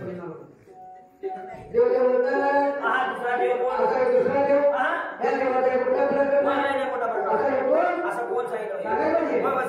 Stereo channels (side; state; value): both; identical; correlation 1.00